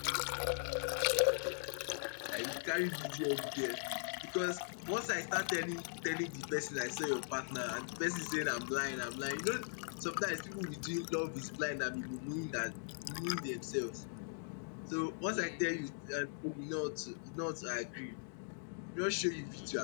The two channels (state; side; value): silent; right; digital silence